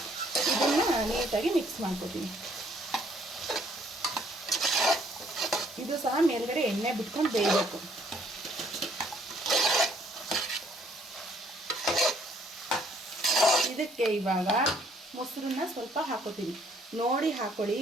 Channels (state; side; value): normal; both; correlation 0.64